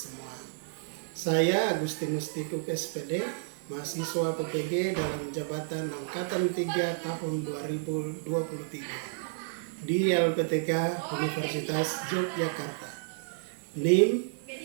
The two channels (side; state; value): left; silent; digital silence